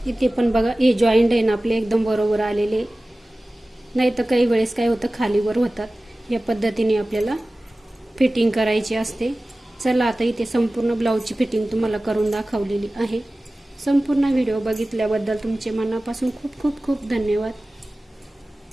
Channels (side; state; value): both; normal; correlation 0.97